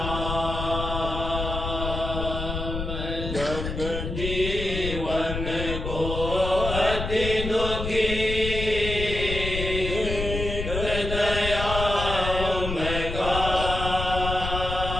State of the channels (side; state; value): left; noise; rumble, 5 dB below the sound